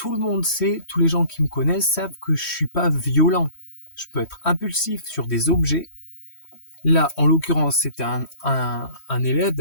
le monde sait, tous les gens qui me connaissent savent que je suis pas violent. Je peux être impulsif sur des objets. Là, en l'occurrence, c'était un élève,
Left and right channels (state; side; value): late; right; 3.1 ms